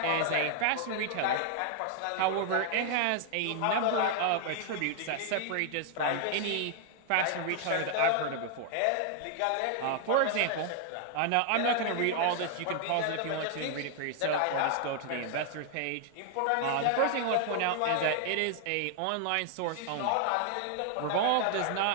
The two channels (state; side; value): different; both; correlation 0.00